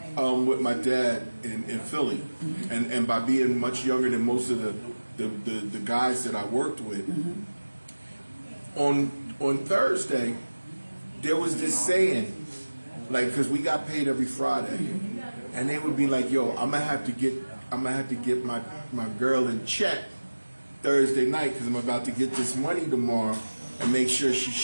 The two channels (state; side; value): inverted; both; correlation -1.00